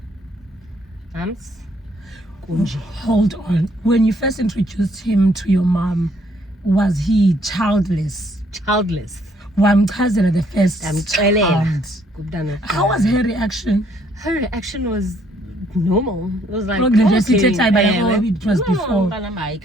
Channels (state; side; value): normal; both; correlation 0.66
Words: Mams, kunje. Hold on. When you first introduced him to your mom, was he childless? Childless. Wamchazela the first Ndamxelela child. kumntana. How was her reaction? Her reaction was normal. It was like, Look, they just okay, it was before.